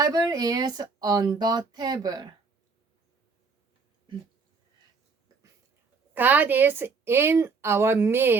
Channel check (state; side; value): quieter; left; 4.7 dB